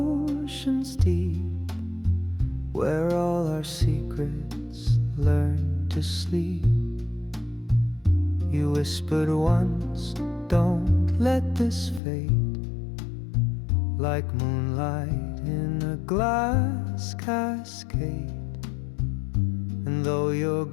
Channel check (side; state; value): right; drops out; at 12.0 s